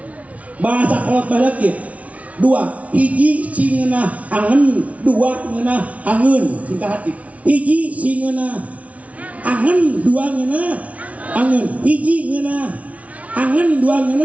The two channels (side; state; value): left; late; 0.067 ms